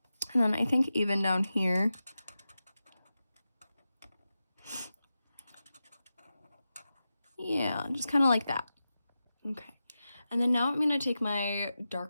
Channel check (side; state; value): both; inverted; correlation -0.92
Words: And then I think even down here, yeah, just kind of like that. Okay, and then now I'm gonna take my